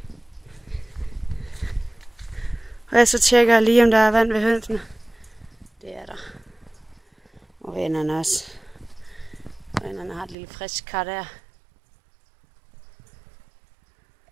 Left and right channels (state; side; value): drops out; left; at 10.4 s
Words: Og så tjekker jeg lige, om der er vand ved hønsene. Det er der. Og vennerne også. Vennerne har et lille frisk kar der.